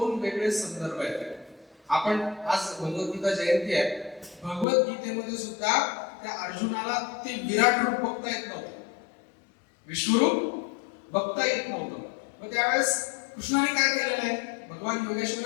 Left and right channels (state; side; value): drops out; right; at 4.7 s